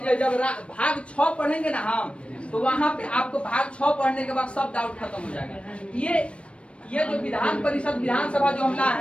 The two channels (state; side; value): late; right; 0.060 ms